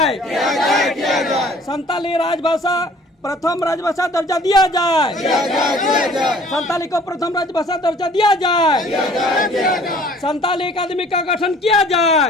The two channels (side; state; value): both; normal; correlation 0.53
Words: संताली राजभाषा प्रथम राजभाषा दर्जा दिया जाए संताली को प्रथम राजभाषा दर्जा दिया जाए संताली अकादमी का गठन किया जाए